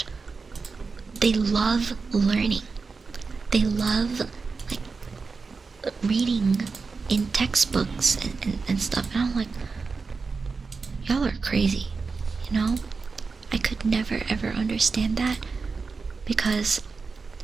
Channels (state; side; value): quieter; left; 4.6 dB